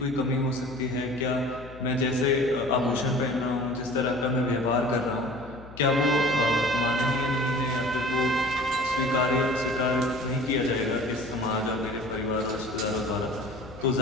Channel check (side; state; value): left; noise; hum, 17 dB below the sound